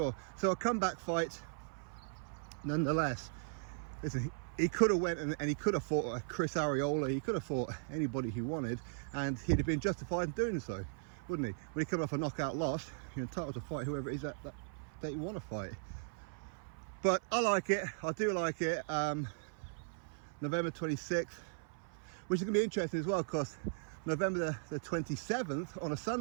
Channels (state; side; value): silent; left; 53 dB below the other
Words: So a comeback fight nonetheless. Listen, he could have went and he could have fought a Chris Arreola, he could have fought anybody he wanted, and he'd have been justified in doing so, wouldn't he? When he come off a knockout loss, you're entitled to fight whoever it is that you want to fight. But I like it, I do like it. November 26th, which is going to be interesting as well, because November the 27th on a